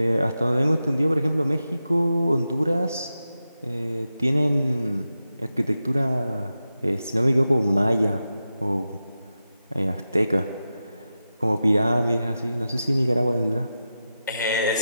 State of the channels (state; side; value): inverted; both; correlation -0.91